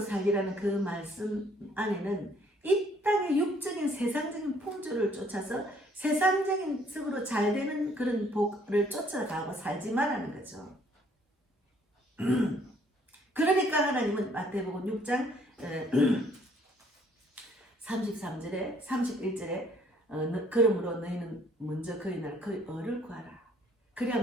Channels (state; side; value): normal; both; correlation 0.63